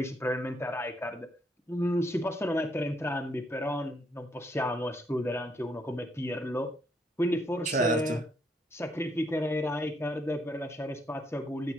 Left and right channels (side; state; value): both; normal; correlation 0.72